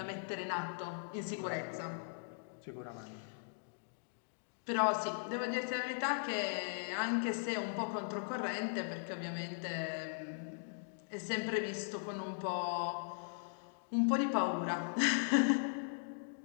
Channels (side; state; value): right; silent; digital silence